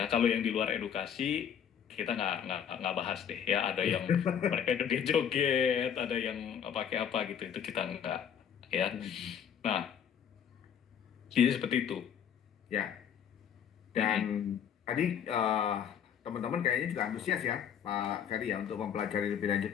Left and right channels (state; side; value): quieter; right; 8.4 dB